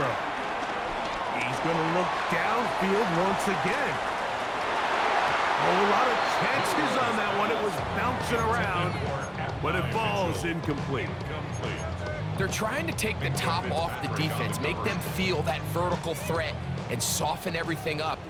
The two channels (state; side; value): identical; both; correlation 1.00